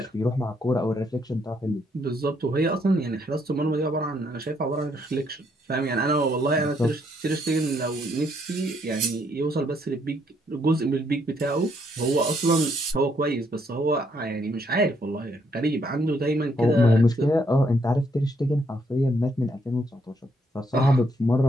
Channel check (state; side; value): normal; both; correlation 0.72